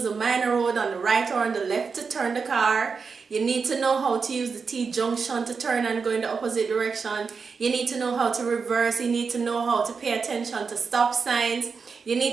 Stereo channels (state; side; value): quieter; left; 5.3 dB